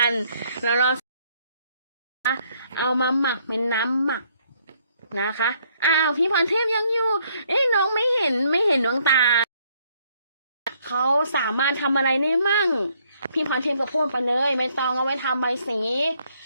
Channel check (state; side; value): inverted; both; correlation -0.68